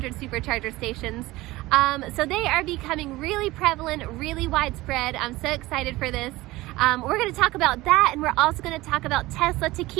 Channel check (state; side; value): quieter; left; 19.2 dB